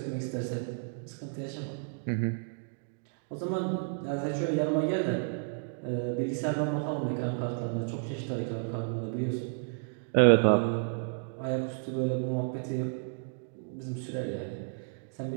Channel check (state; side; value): silent; left; digital silence